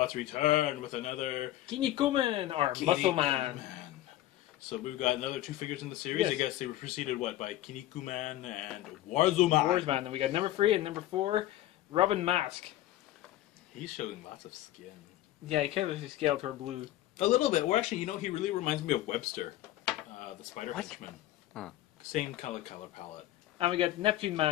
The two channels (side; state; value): right; quieter; 14.6 dB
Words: return with another Kinnikuman, or Muscle Man. Kinnikuman. So we've got another two figures in the series. Yes. I guess they were preceded by Kinnikuman and Warzman. Warzman. And we got number 3 and number 4, Robin Mask. He's showing lots of skin. Yeah, he kind of scaled toward blue. A little bit. Well, actually, you know, he really reminds me of Webster, the Spider Henchman. Huh. Same color palette. And we got Neptune